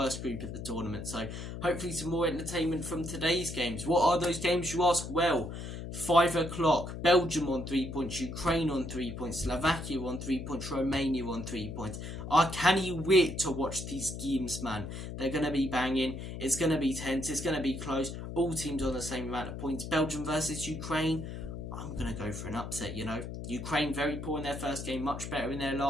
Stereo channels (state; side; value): noise; left; hum, 8 dB below the sound